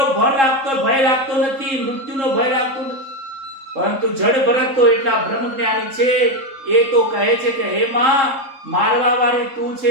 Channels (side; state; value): left; late; 3.7 ms